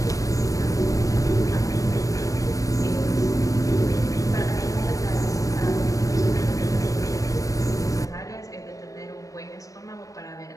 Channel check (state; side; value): late; right; 0.16 ms